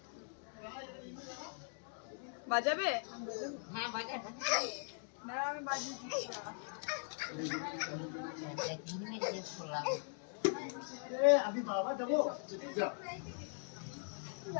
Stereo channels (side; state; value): right; silent; 51 dB below the other